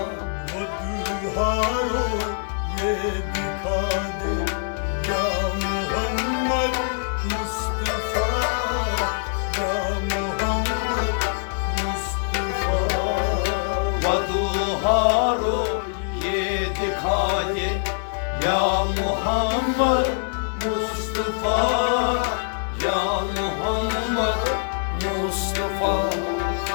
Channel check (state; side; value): silent; right; 61 dB below the other